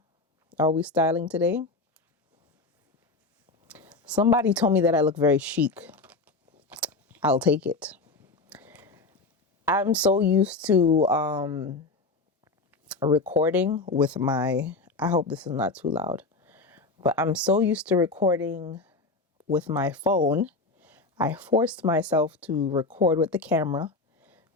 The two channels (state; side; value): quieter; right; 3.6 dB